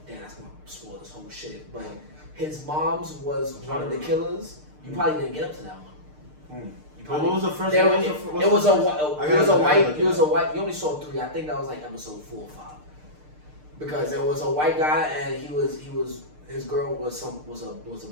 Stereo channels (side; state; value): left; late; 6.6 ms